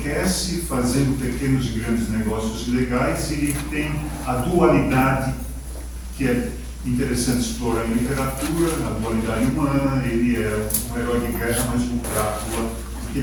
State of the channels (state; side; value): identical; both; correlation 1.00